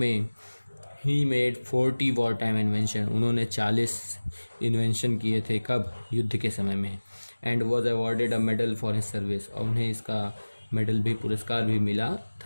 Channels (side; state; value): both; inverted; correlation -1.00